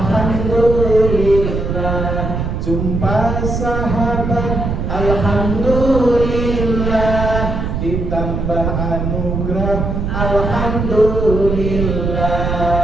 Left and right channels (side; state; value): right; noise; rumble, 2 dB below the sound